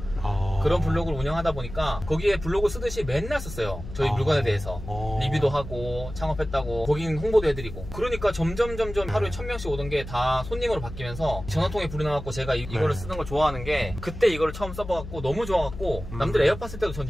그런 블로그를 운영하다 보니까 거기에 블로그 쓰듯이 맨날 썼어요. 저희 물건에 대해서 리뷰도 하고 창업했다고 고객 홍보도 해드리고. 그러니까 점점 하루에 1000명씩 오던 게 다 손님으로 바뀌면서 전화통에 불이 나갖고 제가 이거를 쓰는 걸 좋아하는 게 그때 이거를 처음 써봐갖고 너무 좋아갖고 남들 에어팟 쓸 때도 전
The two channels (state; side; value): noise; left; hum, 11 dB below the sound